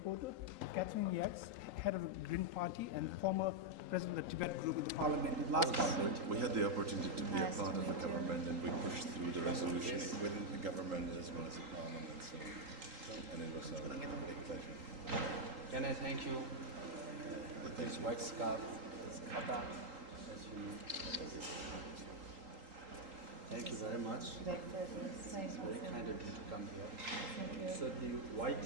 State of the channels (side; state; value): left; late; 3.8 ms